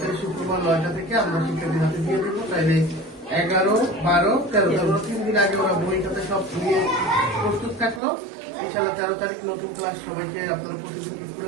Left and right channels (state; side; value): drops out; left; at 8.0 s